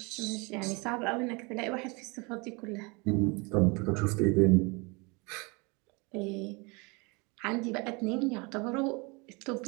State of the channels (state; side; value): quieter; left; 28.5 dB